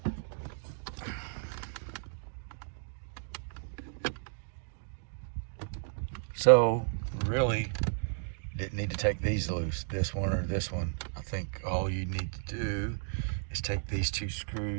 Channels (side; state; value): left; silent; digital silence